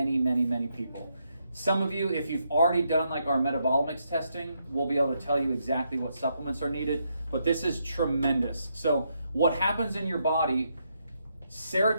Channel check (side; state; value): both; inverted; correlation -0.78